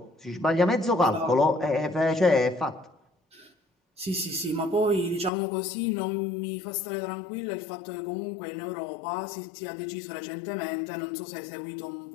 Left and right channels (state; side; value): drops out; right; at 5.3 s